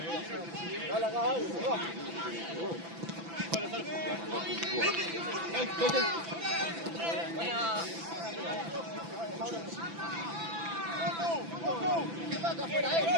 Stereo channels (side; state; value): left; late; 6.0 ms